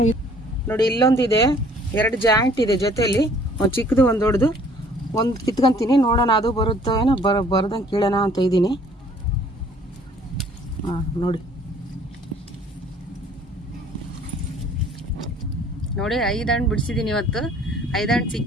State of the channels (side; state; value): both; normal; correlation 0.56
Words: ನೋಡಿ ಇಲ್ಲೊಂದಿದೆ, 2 ಜಾಯಿಂಟ್ ಇದೆ ಜೊತೆಯಲ್ಲಿ, ಒಂದು ಚಿಕ್ಕದು ಒಂದು ದೊಡ್ಡದು. ಒಂದು ಕಿತ್ಕೊಂತೀನಿ, ನೋಡೋಣ ಅದು ಬರುತ್ತೋ ಏನೋ. ಬರ್ದಂಗೆ ಕೀಳೋಣ ಅಂತ ಇದ್ದೀನಿ. ನೋಡಿ 5 ಹಣ್ಣು ಬಿಡಿಸಿದ್ದೀನಿ ಇವತ್ತು. 5 ಹಣ್ಣು